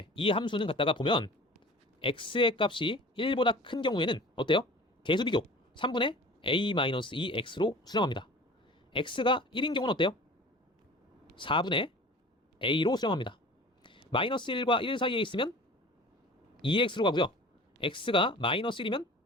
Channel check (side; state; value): both; normal; correlation 0.42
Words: 이 함수는 갖다가 보면 x의 값이 1보다 큰 경우에는 어때요? 계수 비교 3분의 a-2x로 수렴합니다. x가 1인 경우는 어때요? 4분의 a로 수렴합니다. 마이너스 1과 1 사이에 있으면 2x로 가고요. x가 마이너스 1이면